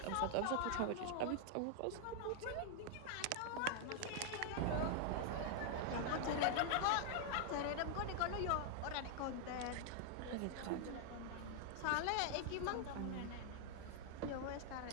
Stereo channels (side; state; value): both; different; correlation 0.00